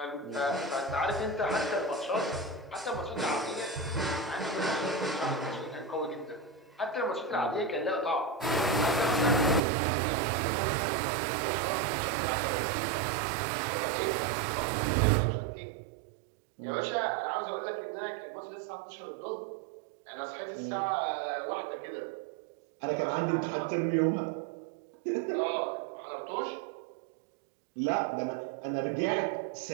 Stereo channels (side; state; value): left; drops out; at 9.6 s